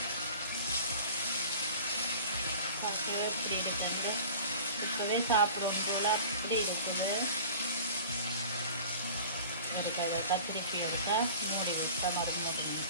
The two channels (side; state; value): both; inverted; correlation -0.42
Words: இப்படி இருக்குது, இப்பவே சாப்பிடும் போல அப்படி இருக்குது. திருப்பி எடுத்தா மூடி விட்டா மருந்து